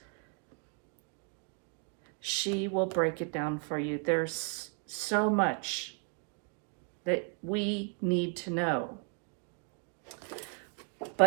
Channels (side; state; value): left; quieter; 39.3 dB